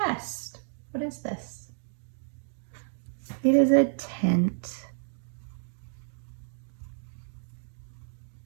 What is this? It is a tent.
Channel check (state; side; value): silent; left; digital silence